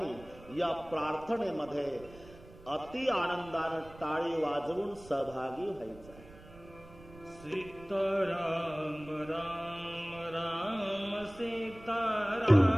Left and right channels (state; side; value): noise; right; rumble, 20 dB below the sound